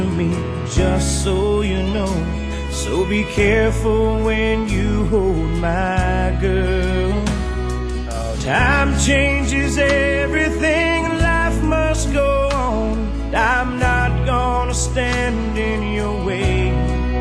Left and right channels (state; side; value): identical; both; correlation 1.00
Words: me, just so you know. So be careful when you hold my girl. Time changes everything, life must go on. I'm not gonna stand in your way.